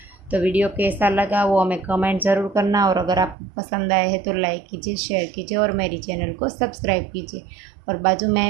तो वीडियो कैसा लगा वो हमें कमेंट ज़रूर करना, और अगर आपको पसंद आए है तो लाइक कीजिए, शेयर कीजिए और मेरी चैनल को सब्सक्राइब कीजिए। और बाजू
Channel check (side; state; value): left; drops out; at 3.4 s